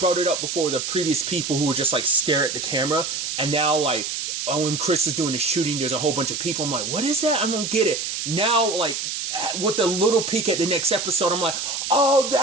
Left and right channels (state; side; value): noise; right; hiss, 4 dB below the sound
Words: it up before, the previous people who would just like stare at the camera, and now like, oh, when Chris is doing the shooting, there's a whole bunch of people. I'm like, what is that? I don't get it. Now, like, with a little peek at the next episode, I'm like, oh,